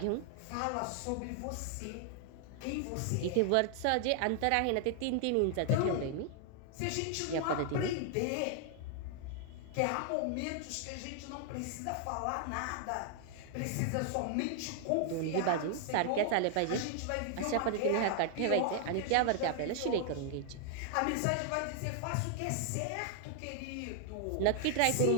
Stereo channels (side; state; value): both; different; correlation 0.00